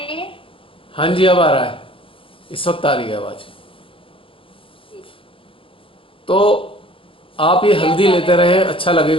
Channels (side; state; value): right; late; 0.26 ms